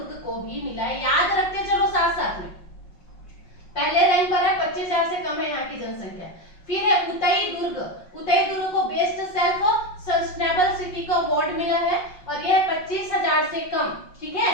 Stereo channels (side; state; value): right; late; 5.5 ms